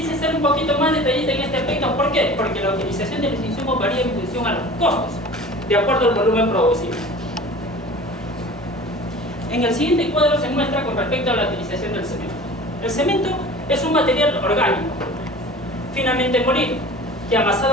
ser un poquito más detallista en este aspecto. ¿Por qué? Porque la utilización de los insumos varía en función a los costos, de acuerdo al volumen producido. En el siguiente cuadro se muestra con respecto a la utilización del cemento. El cemento es un material orgánico, finamente molido, que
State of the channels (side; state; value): both; normal; correlation 0.41